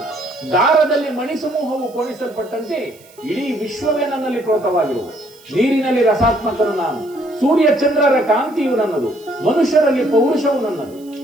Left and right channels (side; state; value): right; noise; hiss, 26 dB below the sound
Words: ದಾರದಲ್ಲಿ ಮಣಿಸಮೂಹವು ಪೋಣಿಸಲ್ಪಟ್ಟಂತೆ ಇಡೀ ವಿಶ್ವವೇ ನನ್ನಲ್ಲಿ ಪ್ರೋತವಾಗಿರುವುದು. ನೀರಿನಲ್ಲಿ ರಸಾತ್ಮಕನು ನಾನು, ಸೂರ್ಯ ಚಂದ್ರರ ಕಾಂತಿಯು ನನ್ನದು, ಮನುಷ್ಯರಲ್ಲಿ ಪೌರುಷವು ನನ್ನದು.